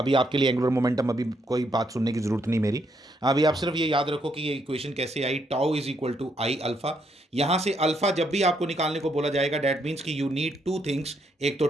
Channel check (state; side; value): normal; both; correlation 0.75